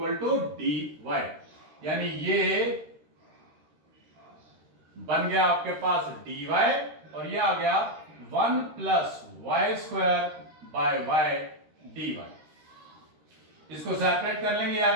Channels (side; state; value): left; late; 13 ms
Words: to dy, यानी ये बन गया आपके पास dy और ये आ गया 1 plus y square by y dy। इसको सेपरेट कर लेंगे, आ